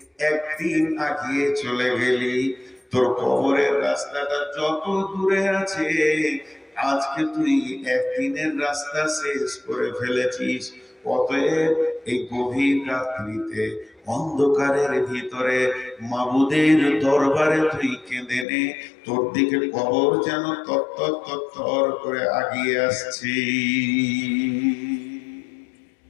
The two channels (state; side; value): drops out; right; at 18.4 s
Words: একদিন আগিয়ে চলে গেলি। তোর কবরের রাস্তাটা যত দূরে আছে, আজকে তুই একদিনের রাস্তা শেষ করে ফেলেছিস। অতএব এই গভীর রাত্রিতে অন্ধকারের ভিতরে মাবুদের দরবারে তুই কেঁদে নে, তোর দিকে কবর যেন তত্তর তত্তর করে আগিয়ে আসছে।